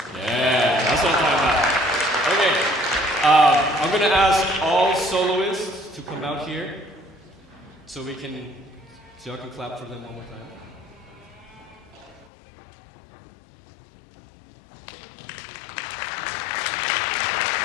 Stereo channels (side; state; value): right; drops out; at 12.2 s